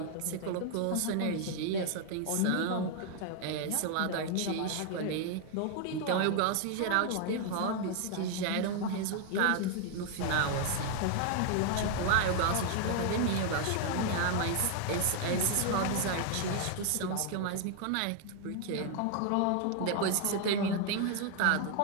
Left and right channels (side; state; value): both; different; correlation 0.00